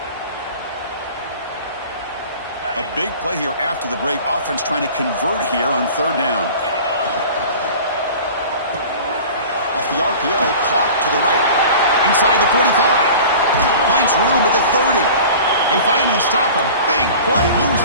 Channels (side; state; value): both; inverted; correlation -0.40